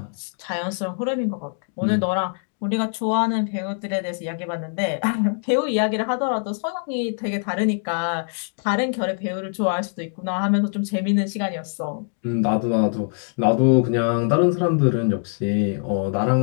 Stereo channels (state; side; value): silent; right; digital silence